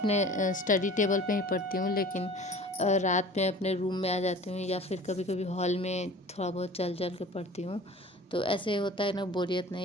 स्टडी टेबल पे ही पढ़ती हूँ, लेकिन रात में अपने रूम में आ जाती हूँ, या फिर कभी कभी हॉल में थोड़ा बहुत चल चल के पढ़ती हूँ। तो ऐसे होता है ना, बोरियत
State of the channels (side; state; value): both; normal; correlation 0.43